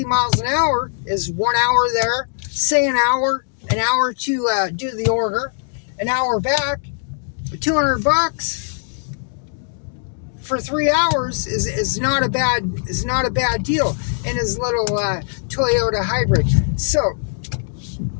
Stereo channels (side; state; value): right; silent; digital silence